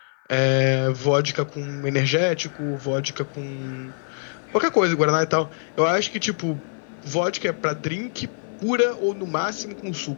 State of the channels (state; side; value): silent; right; 57 dB below the other